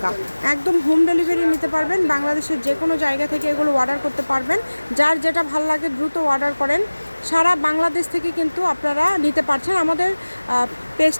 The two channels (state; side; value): inverted; both; correlation -1.00